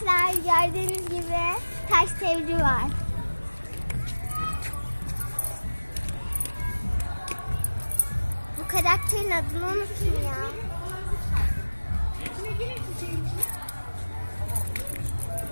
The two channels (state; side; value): inverted; both; correlation -1.00